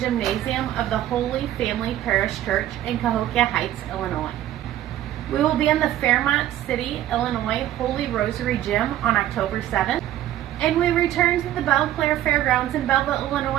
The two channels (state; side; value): quieter; left; 12.8 dB